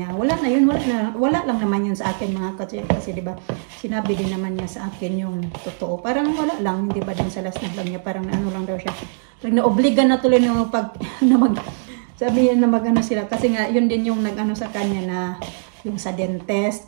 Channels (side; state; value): left; silent; digital silence